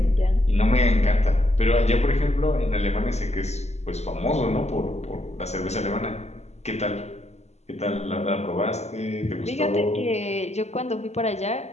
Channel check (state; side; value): late; right; 0.32 ms